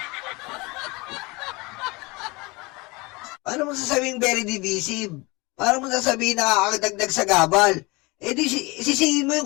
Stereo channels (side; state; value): right; quieter; 25.0 dB